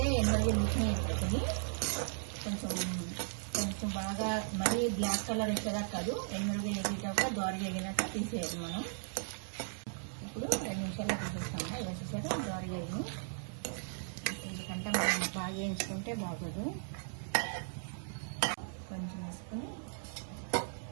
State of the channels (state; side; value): silent; left; digital silence